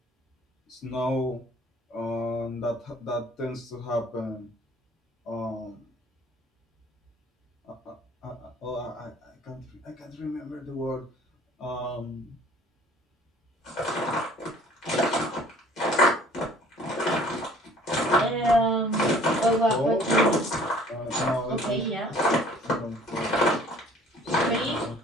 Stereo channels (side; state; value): both; normal; correlation 0.53